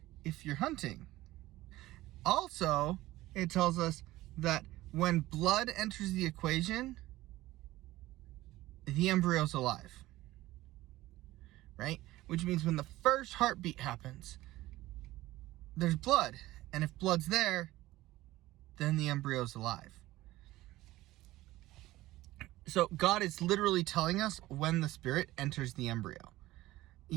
if you're hunting. Also, it tells us that when blood enters the equation, the embryo's alive. Right? Which means when the first heartbeat happens, there's blood. And if blood's there, then the embryo's alive. So God is literally telling us when the spirit enters the embryo.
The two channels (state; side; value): quieter; left; 17.1 dB